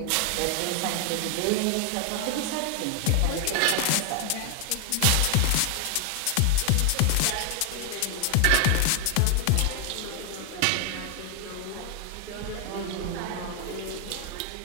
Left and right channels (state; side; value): different; both; correlation 0.00